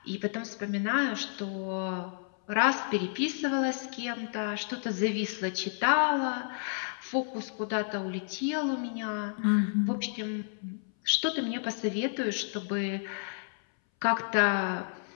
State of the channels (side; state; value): right; silent; 57 dB below the other